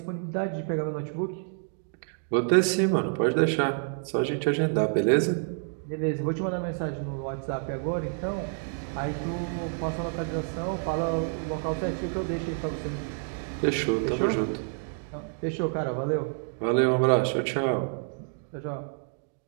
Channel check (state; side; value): silent; left; 59 dB below the other